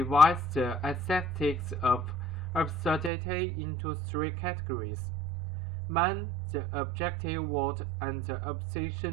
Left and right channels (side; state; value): left; drops out; at 3.1 s